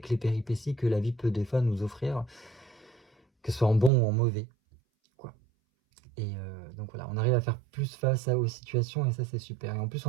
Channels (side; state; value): left; drops out; at 3.9 s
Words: les péripéties que la vie peut des fois nous offrir, que ce soit en bon ou en mauvais, quoi. Et donc voilà, on arrive à faire plus face aux situations, et ça, c'est super. Et en plus,